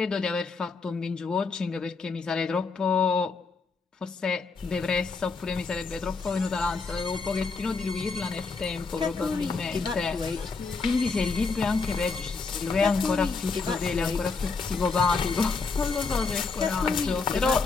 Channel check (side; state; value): right; quieter; 4.5 dB